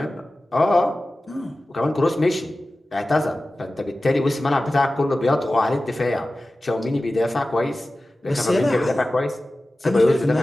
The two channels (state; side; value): normal; both; correlation 0.95